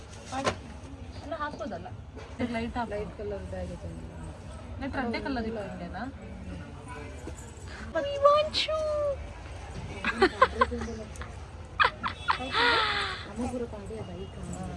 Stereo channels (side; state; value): both; identical; correlation 1.00